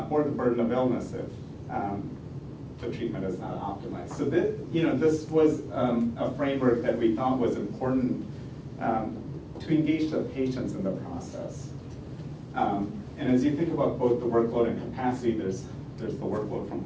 or the burden of illness if the treatment is not optimized. So this was a framework that we thought was important to engage the patients in the process. And as you think about both the workload and capacity, there's the workload from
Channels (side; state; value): both; identical; correlation 1.00